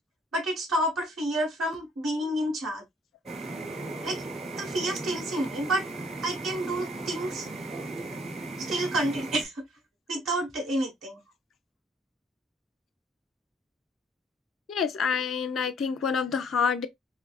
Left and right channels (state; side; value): normal; both; correlation 0.61